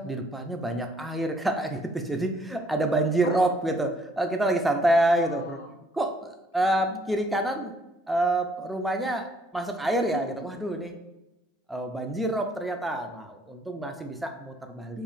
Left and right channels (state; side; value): normal; both; correlation 0.64